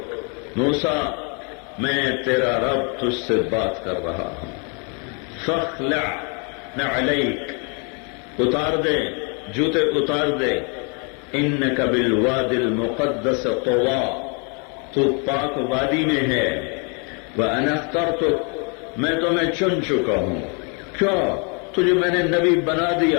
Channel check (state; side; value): quieter; right; 35.7 dB